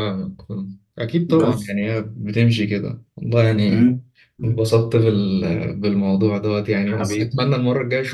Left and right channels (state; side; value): identical; both; correlation 1.00